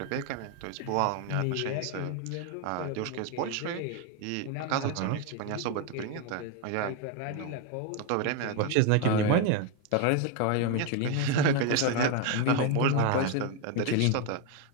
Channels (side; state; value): both; different; correlation 0.02